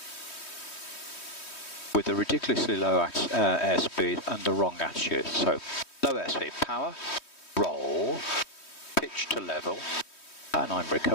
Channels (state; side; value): late; right; 3.1 ms